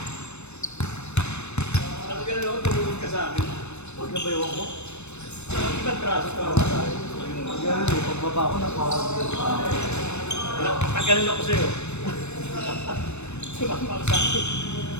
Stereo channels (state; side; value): late; right; 0.81 ms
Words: sabi ka na ako, tumulong ka sa akin. Huwag na ba yung ako? Ibang traso ka naman sa akin. Ganun, pagbaba ko na Tagalan ako sa'yo. Sumama ka sa akin.